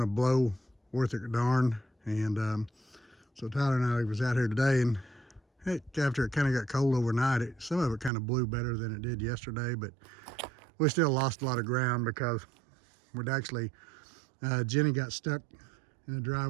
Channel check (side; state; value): left; drops out; at 8.1 s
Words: to blow worth a darn. And so Tyler and I was out here today, and after it kind of got cold overnight, some of it kind of blew better than it did yesterday. But we still lost a lot of ground because we'd actually Jenny got stuck in the